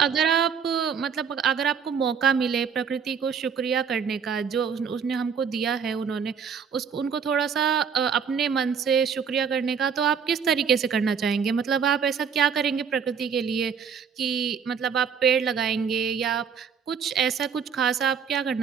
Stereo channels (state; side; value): quieter; left; 6.7 dB